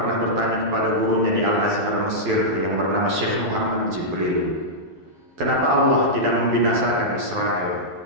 bertanya kepada gurunya di Al-Azhar Mesir yang bernama Syekh Muhammad Jibril, kenapa Allah tidak membinasakan Israel?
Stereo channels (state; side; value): late; left; 12 ms